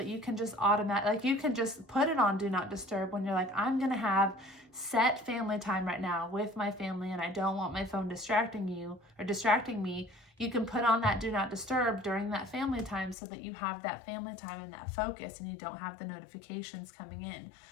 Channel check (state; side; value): drops out; right; at 13.2 s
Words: you can just you can just put it on do not disturb when you're like, I'm going to have set family time right now with my family and I don't want my phone distracting me. You can put on that do not disturb during that family time so that you have that family time and that focus and you don't have the notifications coming in.